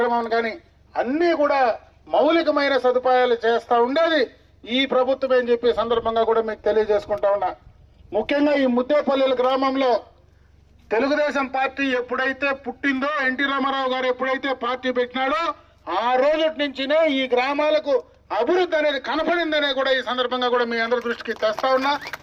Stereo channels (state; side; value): identical; both; correlation 1.00